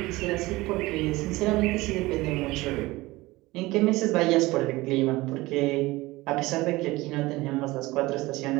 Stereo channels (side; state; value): left; quieter; 20.1 dB